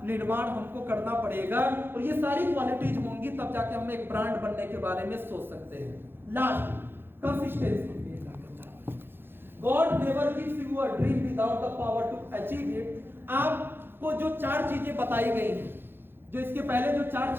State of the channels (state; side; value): late; left; 0.10 ms